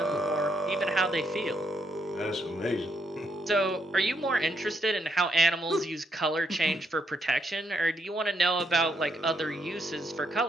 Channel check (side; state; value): both; normal; correlation 0.76